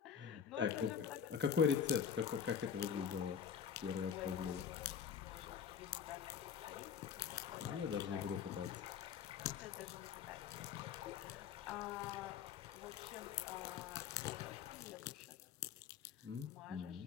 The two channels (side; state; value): right; quieter; 7.7 dB